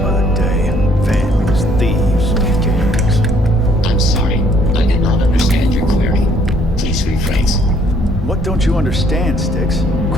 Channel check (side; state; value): both; normal; correlation 0.64